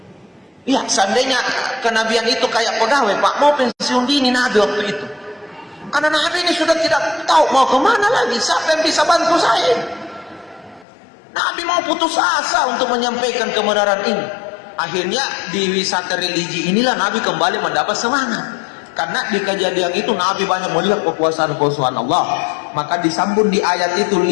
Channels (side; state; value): right; drops out; at 10.9 s